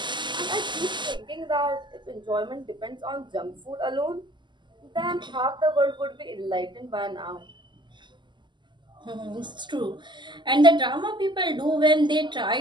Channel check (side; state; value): left; late; 0.22 ms